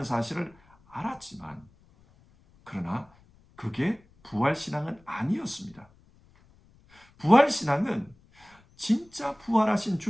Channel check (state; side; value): noise; left; rumble, 30 dB below the sound